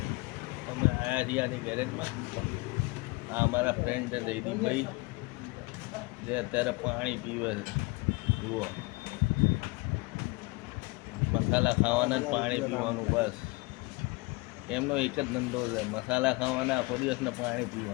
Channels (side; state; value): right; quieter; 24.9 dB